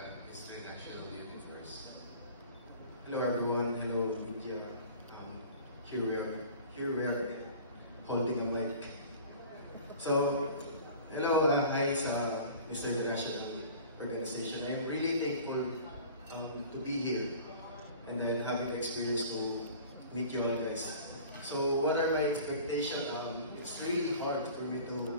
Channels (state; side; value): inverted; both; correlation -0.43